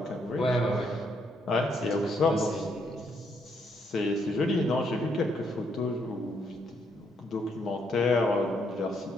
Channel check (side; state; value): both; normal; correlation 0.74